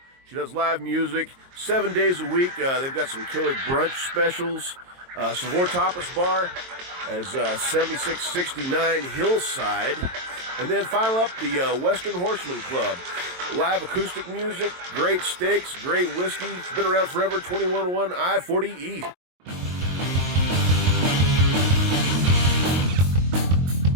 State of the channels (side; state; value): left; late; 22 ms